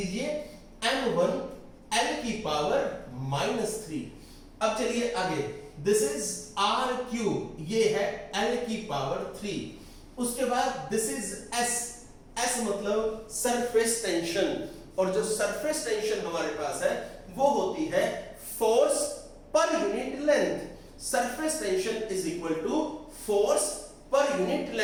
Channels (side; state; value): both; identical; correlation 1.00